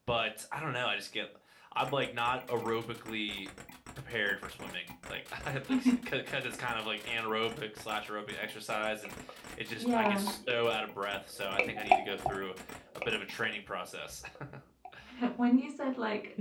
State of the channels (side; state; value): both; identical; correlation 1.00